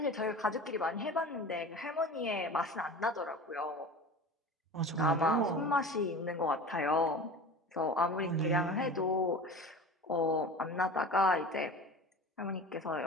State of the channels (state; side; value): normal; both; correlation 0.35